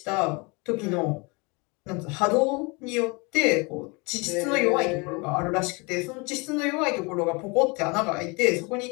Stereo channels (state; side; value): quieter; right; 28.7 dB